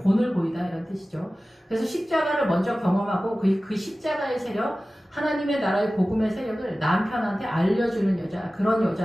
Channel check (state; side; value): normal; both; correlation 0.96